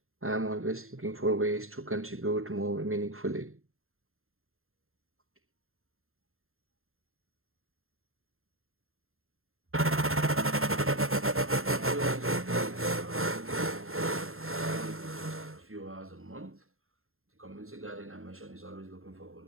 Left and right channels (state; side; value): late; left; 0.61 ms